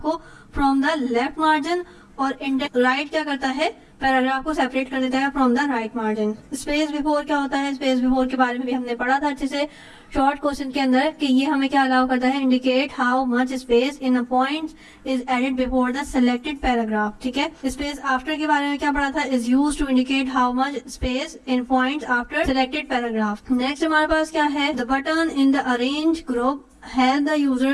को फ्रॉम द लेफ्ट मार्जिन, और इंडेंट राइट क्या करता है? पैराग्राफ को सेपरेट कर देता है from the right margin. Space before क्या होता है? स्पेस बिफोर के बारे में भी हमने पढ़ा था अच्छे से शॉर्ट क्वेश्चन के अंदर, कि ये हमें क्या अलाउ करता है? Indicate how much space in a point is added before the selected paragraph, ठीक है। स्पेस आफ्टर के बारे में क्या पढ़ा था? Is used to indicate how much space in points after selected paragraph. Next हमारे पास क्या है? The button in the arrange group help the user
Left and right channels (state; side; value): identical; both; correlation 1.00